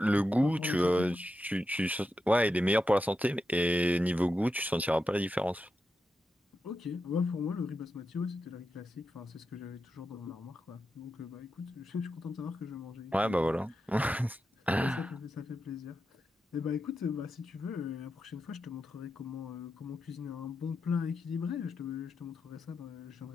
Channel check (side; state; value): both; normal; correlation 0.88